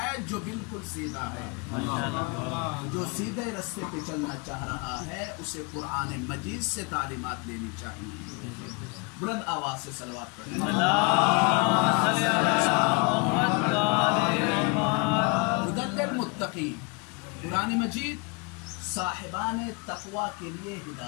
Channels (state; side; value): quieter; right; 31.2 dB